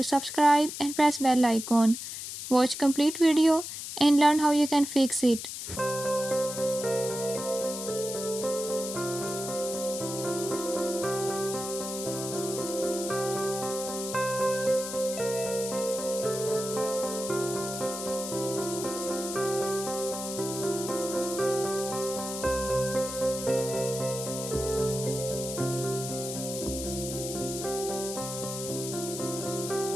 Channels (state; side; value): noise; left; hiss, 7 dB below the sound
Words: subscribe and press bell icon. Watch complete video and learn how you can fix it.